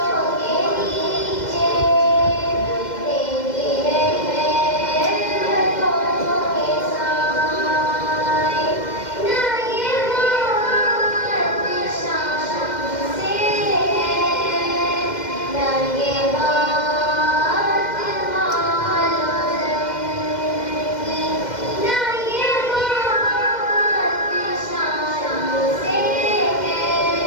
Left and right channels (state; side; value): late; right; 2.1 ms